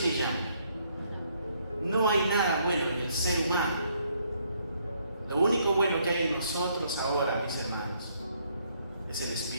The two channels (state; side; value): inverted; both; correlation -0.70